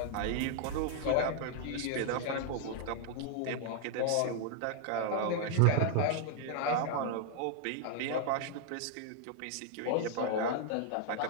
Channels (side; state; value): both; different; correlation 0.00